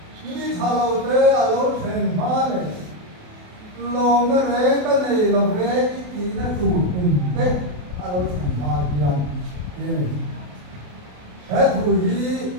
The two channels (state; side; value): late; left; 28 ms